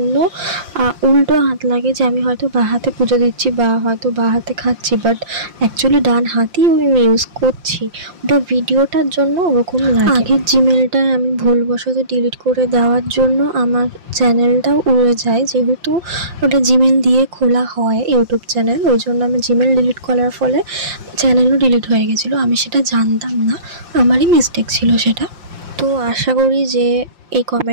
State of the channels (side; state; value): left; late; 5.7 ms